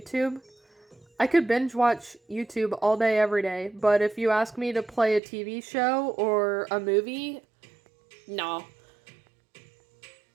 I could binge watch YouTube all day, every day, but if you ask me to play a TV show or a movie, no.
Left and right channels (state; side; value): drops out; left; at 5.2 s